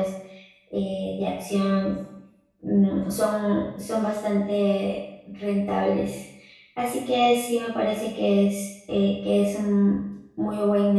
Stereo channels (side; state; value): both; identical; correlation 1.00